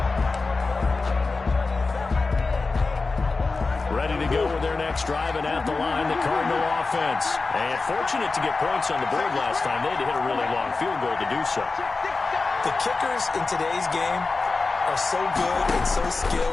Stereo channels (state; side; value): quieter; right; 3.9 dB